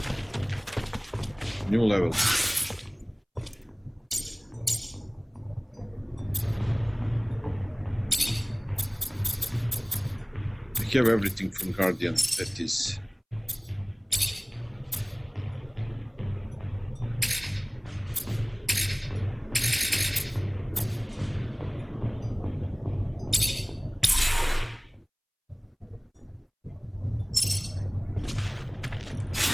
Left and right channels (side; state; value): both; identical; correlation 1.00